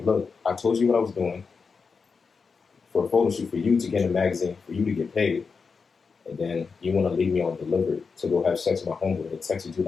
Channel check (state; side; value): quieter; right; 5.1 dB